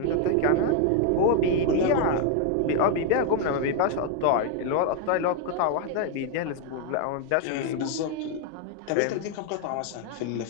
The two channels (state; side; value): different; both; correlation 0.00